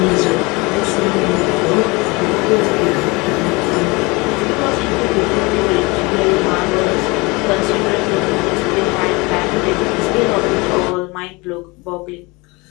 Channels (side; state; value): right; quieter; 25.7 dB